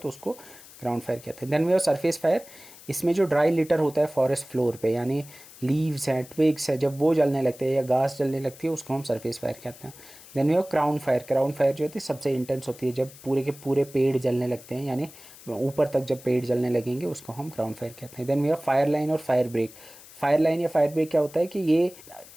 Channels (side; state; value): left; noise; hiss, 20 dB below the sound